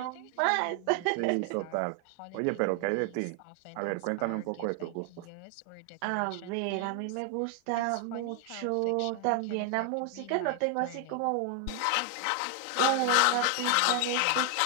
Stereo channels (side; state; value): both; different; correlation 0.00